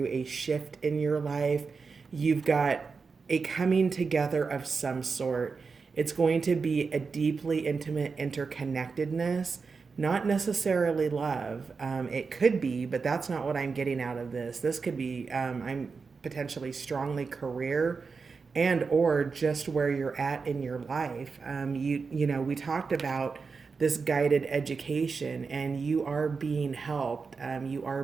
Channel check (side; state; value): left; quieter; 4.9 dB